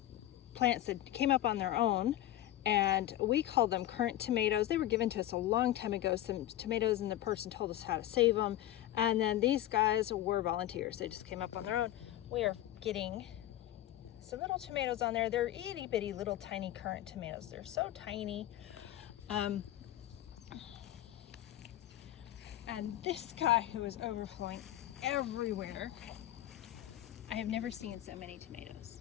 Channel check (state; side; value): quieter; right; 13.5 dB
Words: plants that came up on their own, and we call them currant tomatoes. They were given to us a long time ago, some tomatoes, and the person told us how to save them. And then these guys were volunteers. They just came up on their own. We are getting some little tomatoes on there. They're itty bitty little tiny currant tomatoes. They're so tiny. And this guy who is overflowing everywhere. I have never seen so many tomatoes.